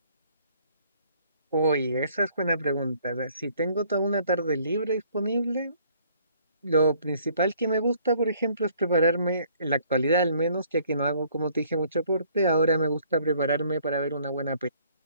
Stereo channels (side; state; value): both; inverted; correlation -0.61